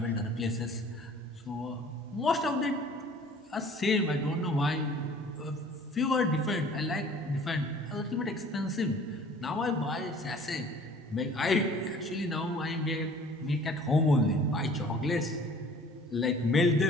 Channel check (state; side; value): normal; both; correlation 0.50